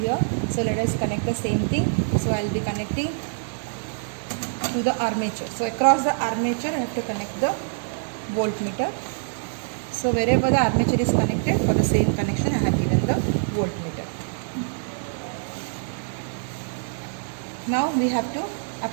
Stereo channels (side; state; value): left; silent; 62 dB below the other